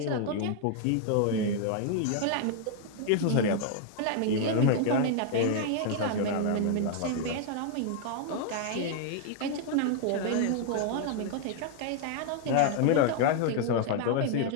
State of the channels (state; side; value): different; both; correlation 0.00